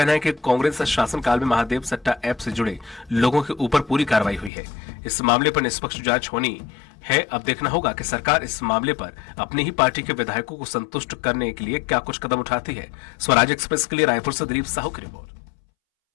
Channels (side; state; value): right; drops out; at 4.5 s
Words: है कि कांग्रेस शासनकाल में महादेव सट्टा ऐप से जुड़े लोगों के ऊपर पूरी कार्रवाई हुई है। इस मामले पर निष्पक्ष जांच होनी है। अब देखना होगा कि सरकार इस मामले पर अपनी ही पार्टी के विधायकों को संतुष्ट करने के लिए क्या कुछ कदम उठाती है। स्वराज एक्सप्रेस के लिए रायपुर से दिलीप साहू की रिपोर्ट।